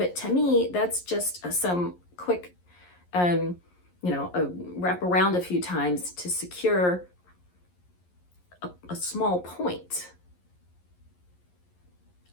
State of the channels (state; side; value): late; right; 11 ms